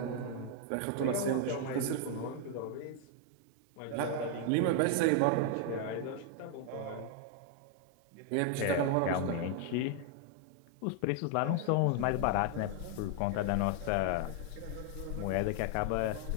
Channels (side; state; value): both; different; correlation 0.00